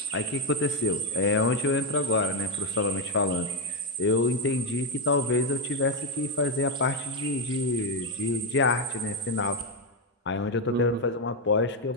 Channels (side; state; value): both; normal; correlation 0.05